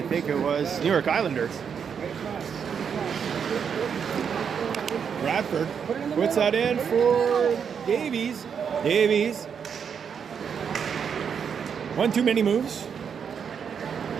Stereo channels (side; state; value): left; quieter; 7.1 dB